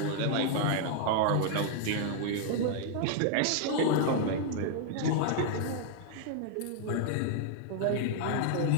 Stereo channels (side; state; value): both; different; correlation 0.00